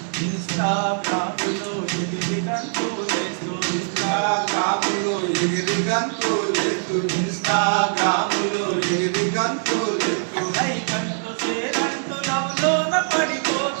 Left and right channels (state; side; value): silent; left; 60 dB below the other